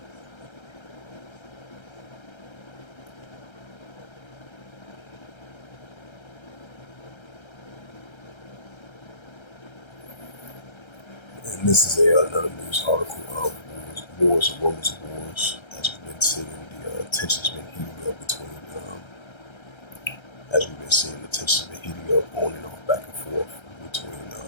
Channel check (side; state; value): right; late; 1.3 ms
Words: And this is another news article of wars and rumors of wars. As we've been seeing, the tensions been heating up between. As we've been seeing, the tensions been heating up on and off, back and forth between